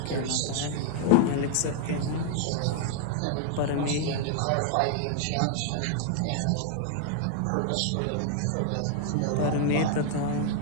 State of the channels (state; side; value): different; both; correlation 0.00